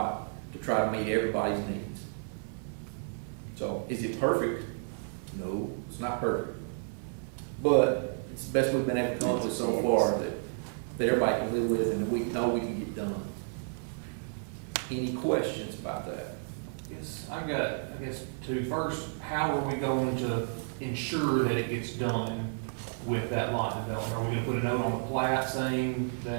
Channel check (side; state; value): left; silent; digital silence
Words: to try to meet everybody's needs. So, is it perfect? No, it's not perfect. But it's the best we've been able to come up with so far that everybody can live with, and that we know we can get done. Any questions about that? Yes, I guess two. First, how are we going to ensure that it gets done with that lot development? Are we gonna put a note on the plat saying